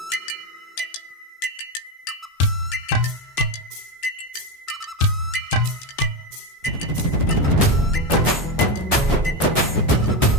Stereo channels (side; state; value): both; normal; correlation 0.14